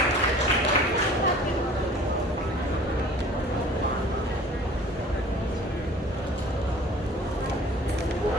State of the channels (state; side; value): normal; both; correlation 0.48